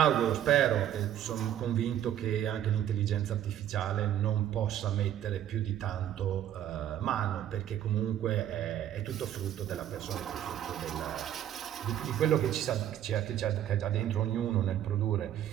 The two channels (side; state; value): left; quieter; 11.1 dB